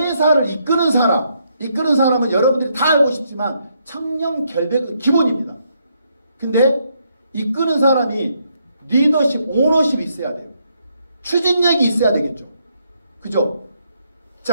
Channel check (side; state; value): both; inverted; correlation -0.75